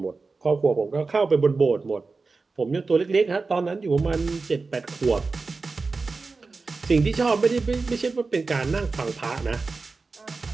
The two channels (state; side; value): quieter; left; 4.0 dB